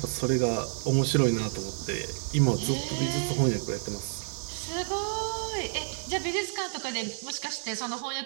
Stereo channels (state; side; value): silent; left; 58 dB below the other